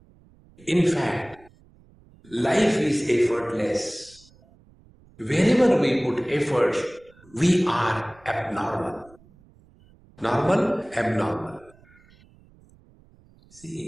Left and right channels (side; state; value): right; noise; rumble, 28 dB below the sound